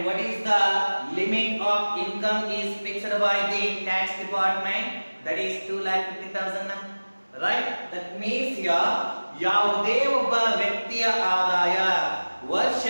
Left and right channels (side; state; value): both; inverted; correlation -1.00